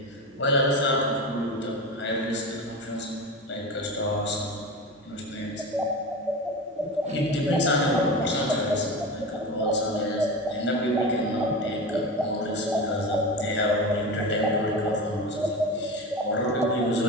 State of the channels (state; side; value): normal; both; correlation 0.27